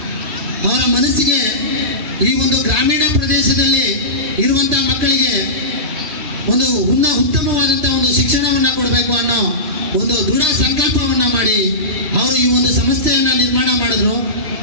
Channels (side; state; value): left; late; 3.2 ms